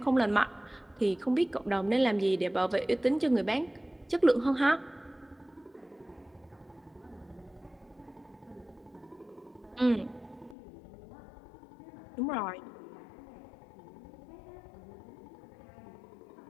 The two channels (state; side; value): drops out; right; at 10.6 s